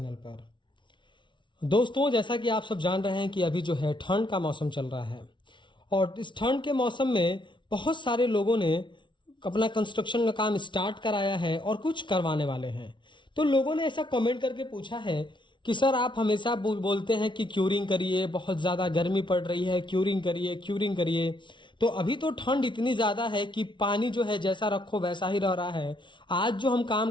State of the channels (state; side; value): late; right; 0.24 ms